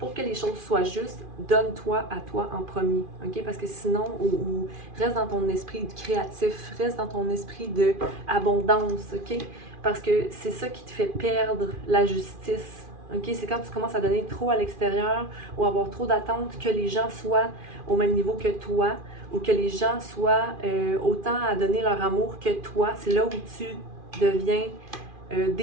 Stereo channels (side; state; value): left; late; 2.4 ms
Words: que les choses soient justes, donne-toi à toi en premier, OK? Parce que sinon, ou reste dans ton esprit créatif, reste dans ton esprit d'abondance, OK? Parce que c'est ça qui te fait perdre la justice, OK? C'est quand tu commences à donner trop à l'extérieur ou avoir trop d'attentes que les gens soient au même niveau que toi ou que les gens soient autant à donner leur amour que toi. C'est là où tu deviens